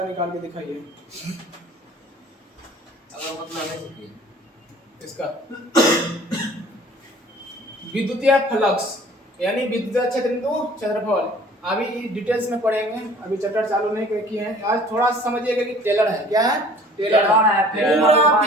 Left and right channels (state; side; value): normal; both; correlation 0.50